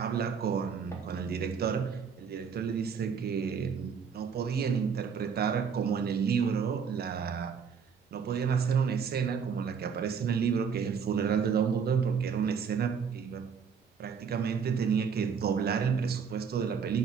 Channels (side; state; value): left; quieter; 6.5 dB